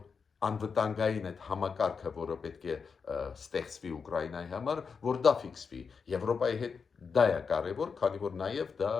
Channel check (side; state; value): right; quieter; 5.6 dB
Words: անվտանգային այդ համակարգը, որը պետք է ստեղծվի Ուկրաինայի համար, որ դա ֆիքսվի։ Եվրոպայի հետ դա է կարևոր, քանի որ նաև դա